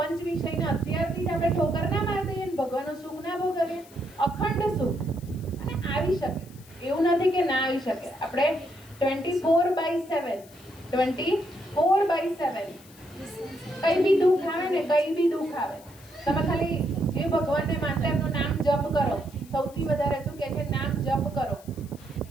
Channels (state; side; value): noise; left; hiss, 24 dB below the sound